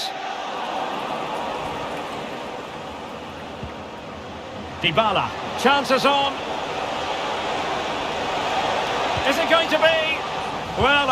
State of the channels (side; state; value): both; identical; correlation 1.00